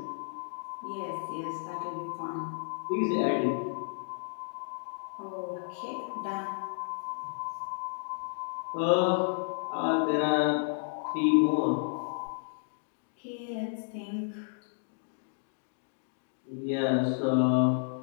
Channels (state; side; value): silent; right; digital silence